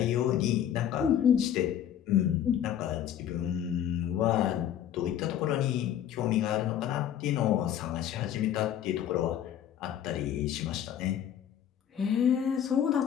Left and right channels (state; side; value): quieter; right; 10.1 dB